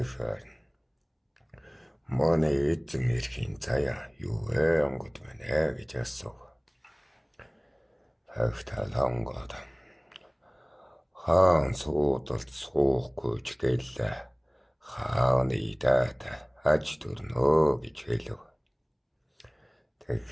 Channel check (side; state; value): both; identical; correlation 1.00